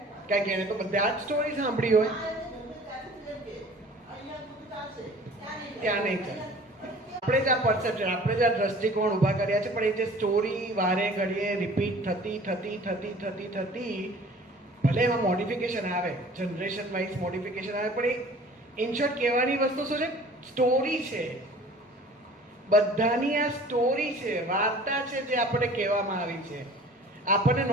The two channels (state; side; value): normal; both; correlation 0.47